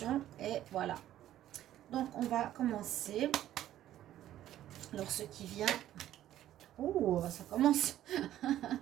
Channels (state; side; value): quieter; left; 12.7 dB